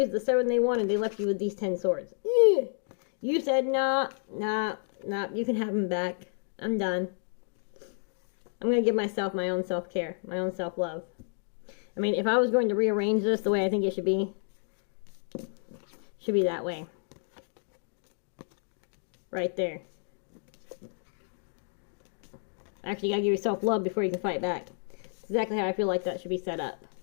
are the 7 they wanted. They left you with these 10 swords. You said, nah, you can have them back. I'm done. I'm going to give myself my own self-care, my own self-love. I mean, if I was going to rearrange this the way I think it should be that way. Right there. Actually, you gotta give yourself love before you can fight back. That's exactly how I feel like that should be set up.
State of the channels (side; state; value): right; silent; digital silence